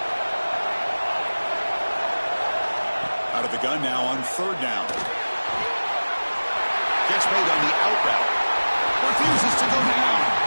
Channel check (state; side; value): inverted; both; correlation -1.00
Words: Out of the gun now on 3rd down. Gets made on the out route. Refuses to go down.